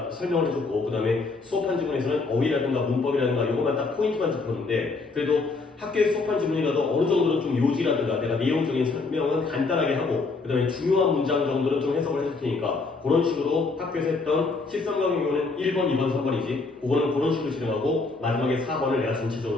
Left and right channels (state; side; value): quieter; right; 3.9 dB